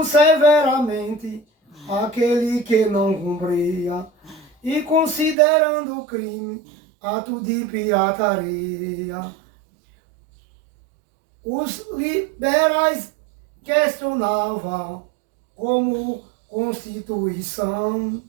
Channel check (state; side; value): drops out; left; at 5.4 s